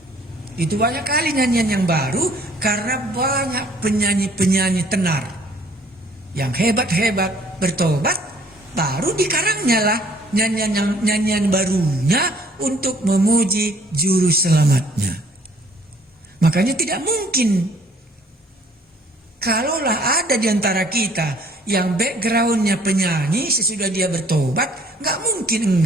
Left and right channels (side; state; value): both; normal; correlation 0.58